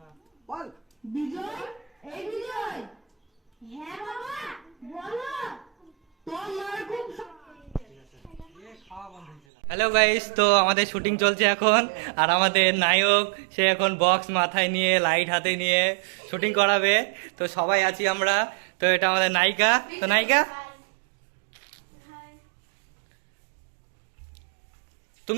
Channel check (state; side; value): drops out; left; at 9.4 s